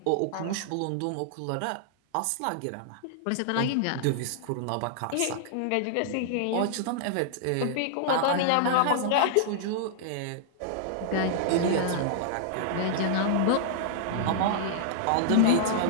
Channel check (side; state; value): both; different; correlation -0.01